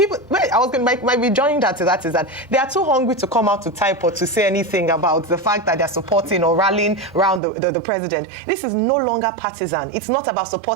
might be joining that to that, is that they are too hungry to come out to type or to say anything about the fact that they're supporting or rallying around the president. This is no longer partisan. It's not about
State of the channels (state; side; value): drops out; left; at 7.4 s